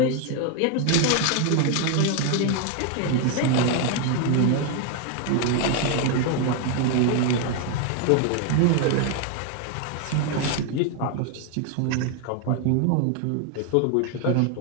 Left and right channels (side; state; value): both; different; correlation 0.01